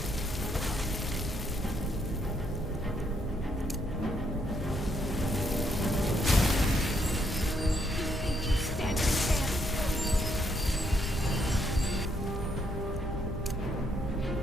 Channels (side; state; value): both; normal; correlation 0.74